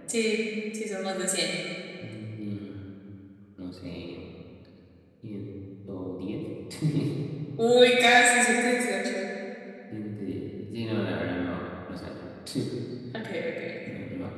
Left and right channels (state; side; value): identical; both; correlation 1.00